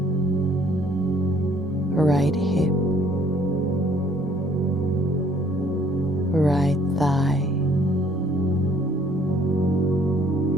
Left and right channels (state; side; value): normal; both; correlation 0.61